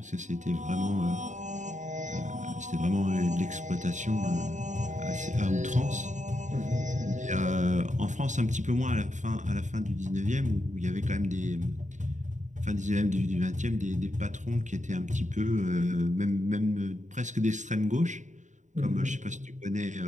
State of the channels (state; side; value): late; left; 0.35 ms